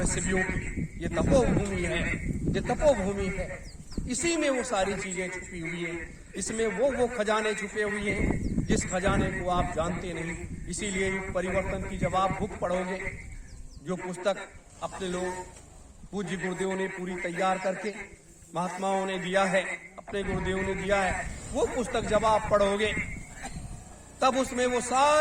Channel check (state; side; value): identical; both; correlation 1.00